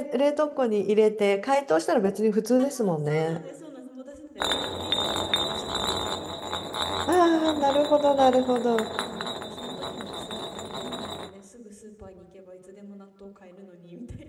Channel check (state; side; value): identical; both; correlation 1.00